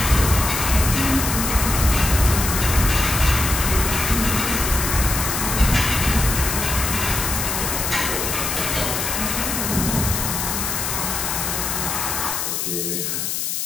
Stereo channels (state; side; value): noise; left; hiss, 2 dB below the sound